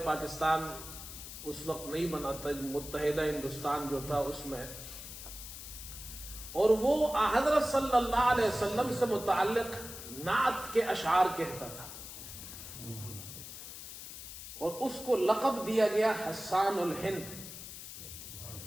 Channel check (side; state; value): left; noise; hiss, 11 dB below the sound